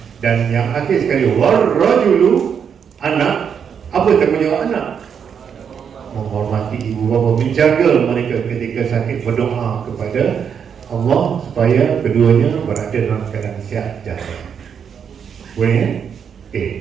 Dan yang akhir sekali, warrajulu, anak. Apa tanggungjawab anak? Menghormati ibu bapa, menjaga mereka ketika sakit, berdoa kepada Allah supaya keduanya berada dalam keadaan sihat jantung. Boleh?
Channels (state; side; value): quieter; left; 7.4 dB